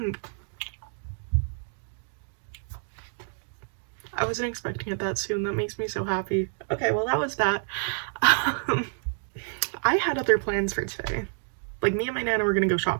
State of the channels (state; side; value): silent; left; digital silence